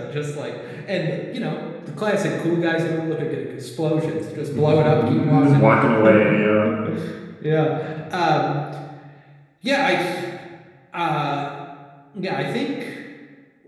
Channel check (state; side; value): identical; both; correlation 1.00